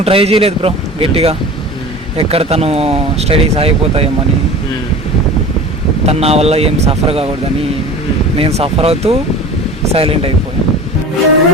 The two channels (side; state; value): both; normal; correlation 0.38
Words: ట్రై చేయలేదు బ్రో గట్టిగా, ఎక్కడ తను స్టడీస్ ఆగిపోతాయేమని. తను నా వల్ల ఏం సఫర్ కాకూడదని నేను సఫర్ అవుతూ సైలెంట్ అయిపోయాను.